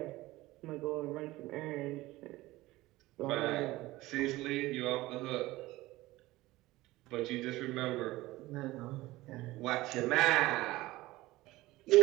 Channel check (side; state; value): left; quieter; 18.4 dB